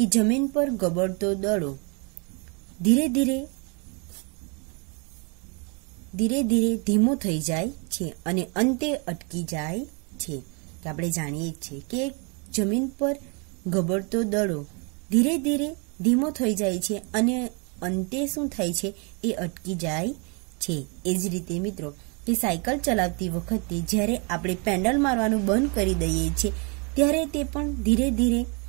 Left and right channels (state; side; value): quieter; left; 33.7 dB